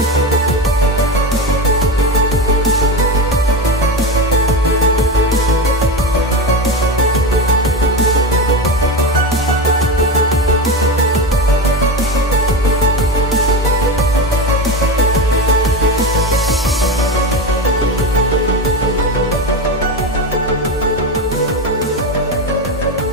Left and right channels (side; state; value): both; normal; correlation 0.19